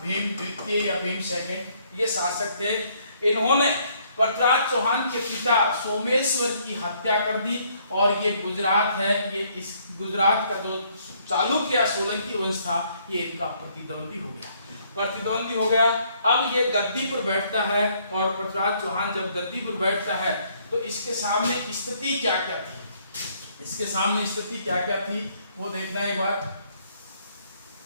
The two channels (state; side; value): inverted; both; correlation -0.67